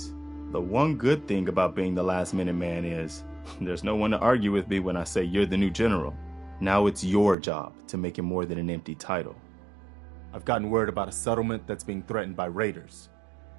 The one good thing about being the last Minuteman is there's no one to argue with me when I say you're the new general. Now it's your job to make it more than an empty title. I've gotten word about a settlement that's being threatened by raiders.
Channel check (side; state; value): left; drops out; at 7.4 s